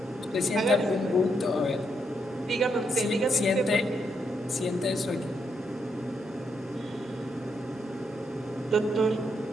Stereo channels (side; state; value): both; normal; correlation 0.78